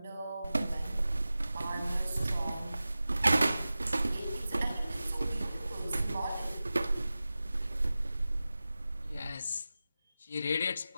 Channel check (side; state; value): both; inverted; correlation -0.95